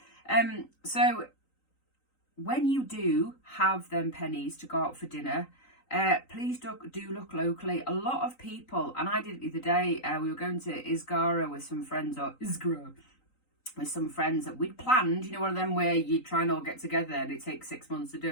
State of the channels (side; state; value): right; late; 3.9 ms